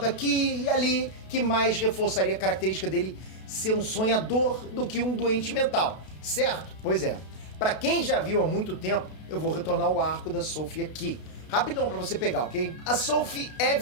aqui e ali que mais reforçaria a característica dele ser um sonhador do que um doente mental, certo? Pois é. Pra quem já viu há muito tempo, eu vou retornar ao arco da Sophie aqui. Rapidão pra você pegar, ok? A Sophie é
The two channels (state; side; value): late; right; 32 ms